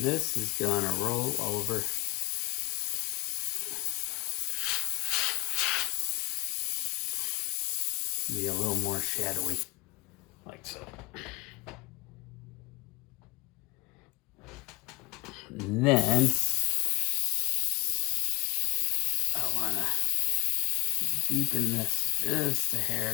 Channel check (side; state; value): right; quieter; 22.5 dB